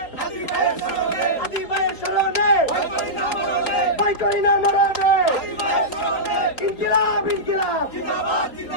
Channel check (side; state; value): right; late; 3.9 ms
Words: হাদি ভাইয়ের স্মরণে, হাদি ভাইয়ের স্মরণে, ভয় করি না মরণে, ইনকিলাব ইনকিলাব জিন্দাবাদ